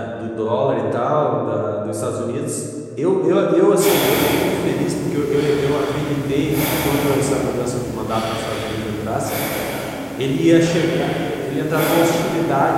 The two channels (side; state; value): both; identical; correlation 1.00